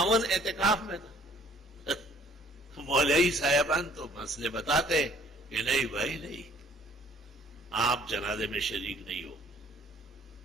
اعتکاف میں تھا. مولوی صاحبان تو مسئلے بتاتے کہ نہیں بھائی نہیں، آپ جنازے میں شریک نہیں ہو.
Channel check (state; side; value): normal; both; correlation 0.57